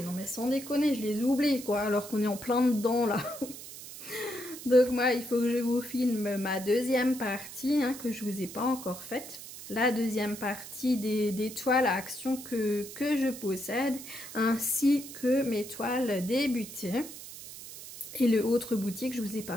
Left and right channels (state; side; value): noise; right; hiss, 13 dB below the sound